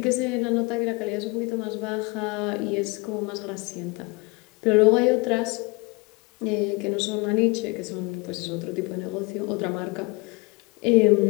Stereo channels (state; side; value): quieter; right; 26.6 dB